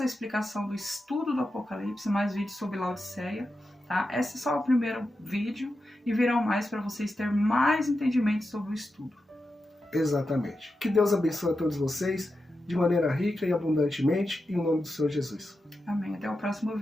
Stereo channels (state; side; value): normal; both; correlation 0.90